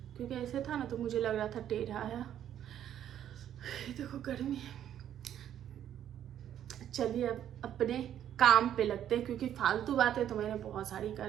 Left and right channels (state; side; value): quieter; left; 10.5 dB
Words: क्योंकि ऐसे था ना तो मुझे लग रहा था टेढ़ा है। देखो गर्मी है। चलिए अब अपने काम पे लगते हैं, क्योंकि फालतू बातें तो मैंने बहुत सारी